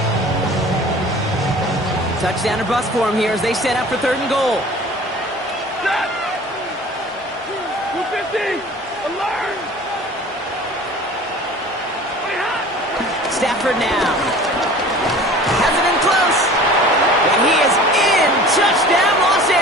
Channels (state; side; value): normal; both; correlation 0.44